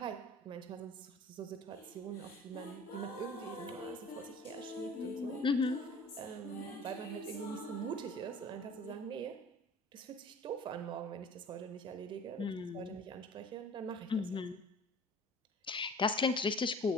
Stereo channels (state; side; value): normal; both; correlation 0.45